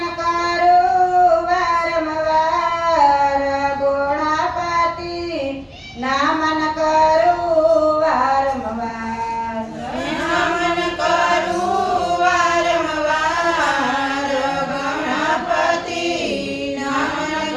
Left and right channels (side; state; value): both; identical; correlation 1.00